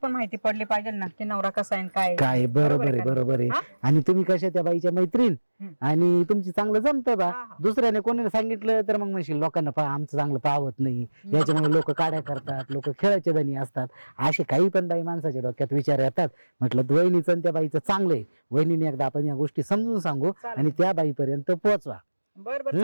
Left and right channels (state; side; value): inverted; both; correlation -1.00